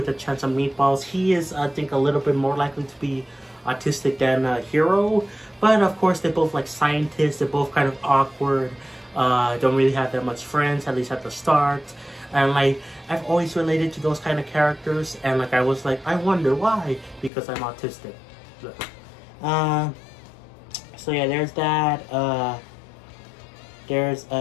a Chance of Meatballs. He is, I think, a little bit more likely to be autistic than Hero, but of course they're both like scientists. They're both kind of awkward, don't really have that much friends, at least at the start, and like I've always related to those kind of characters, and like I was like, I wonder why, because I'm autistic. So yeah, there's that. There's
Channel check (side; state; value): right; drops out; at 17.3 s